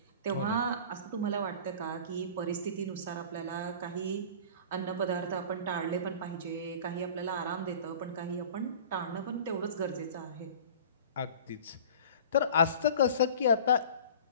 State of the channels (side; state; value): both; inverted; correlation -0.41